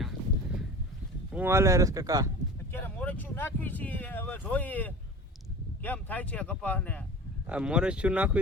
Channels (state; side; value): normal; both; correlation 0.37